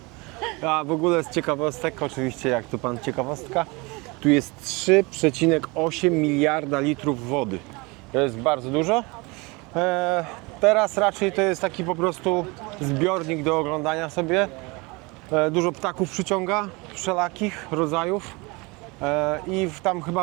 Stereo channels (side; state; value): left; quieter; 26.2 dB